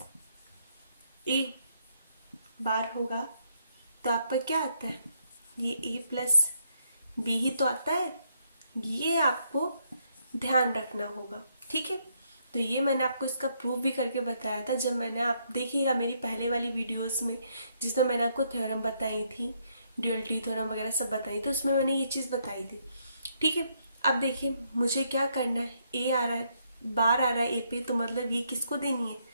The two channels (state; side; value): inverted; both; correlation -0.74